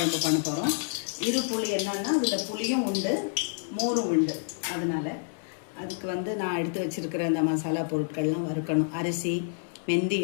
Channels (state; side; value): silent; right; 59 dB below the other